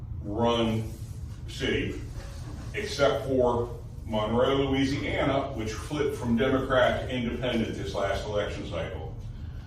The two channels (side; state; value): both; identical; correlation 1.00